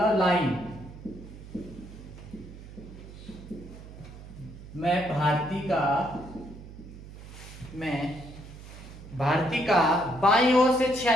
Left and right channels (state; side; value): noise; right; hum, 15 dB below the sound